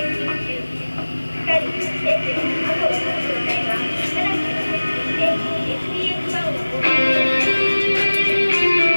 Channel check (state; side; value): inverted; both; correlation -1.00